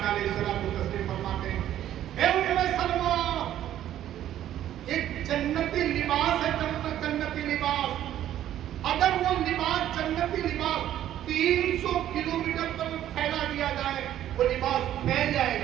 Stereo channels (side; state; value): left; quieter; 11.9 dB